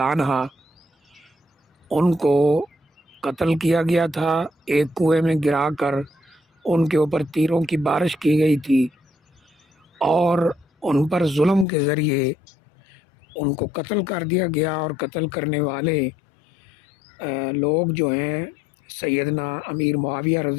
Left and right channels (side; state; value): right; drops out; at 11.7 s